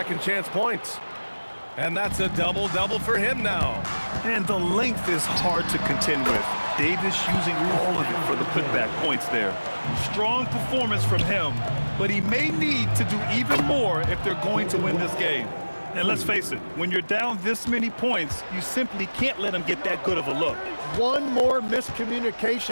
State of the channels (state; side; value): inverted; both; correlation -1.00